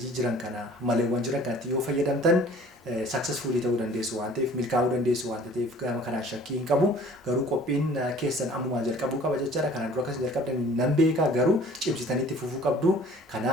jiran kana maleewwan jiran kanatti yoo fayyadamtan successfully ta'uu dandeessu waan ta'eef milkaa'uu dandeessu waan ta'eef gama kanaan shakkii hin qabu. Garuu qophiin keessan ammumaa jalqabuu qaba jechaadha. Kana dura akkas jalqabdan nan beeka garuu cimsitaniitti fufuu qabdu.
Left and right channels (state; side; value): normal; both; correlation 0.50